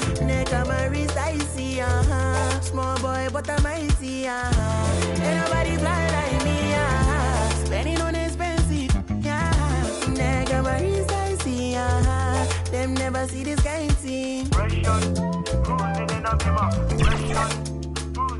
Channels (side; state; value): both; identical; correlation 1.00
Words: neck on my wrist icy, small boy but I'm mighty, ain't nobody fly like me, spending on expensive, neck on my wrist icy, them never see this kind of thing. Cruising in a bima,